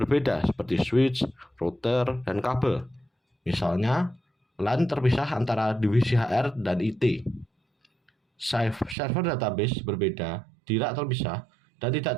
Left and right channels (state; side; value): drops out; left; at 9.0 s